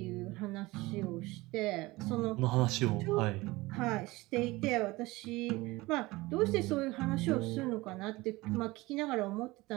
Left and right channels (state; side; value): quieter; left; 20.8 dB